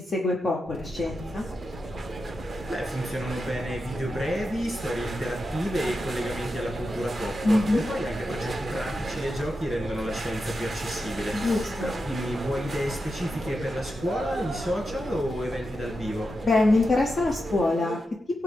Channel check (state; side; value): normal; both; correlation 0.89